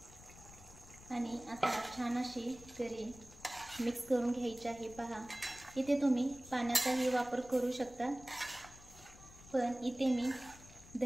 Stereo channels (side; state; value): left; noise; rumble, 19 dB below the sound